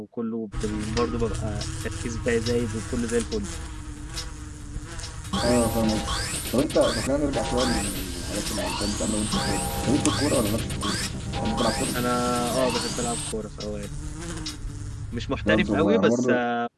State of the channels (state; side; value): identical; both; correlation 1.00